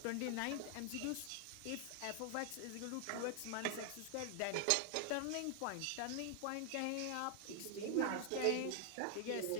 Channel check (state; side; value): different; both; correlation 0.00